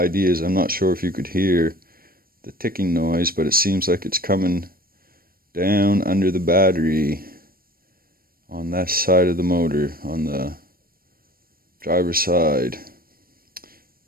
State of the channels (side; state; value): left; late; 0.43 ms